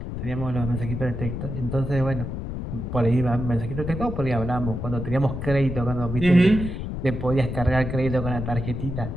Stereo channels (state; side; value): noise; left; rumble, 5 dB below the sound